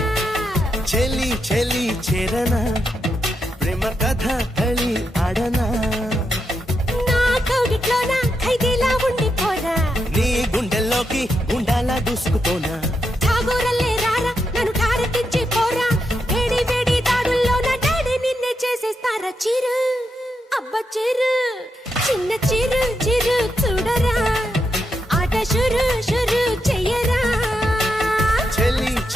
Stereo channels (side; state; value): both; normal; correlation 0.83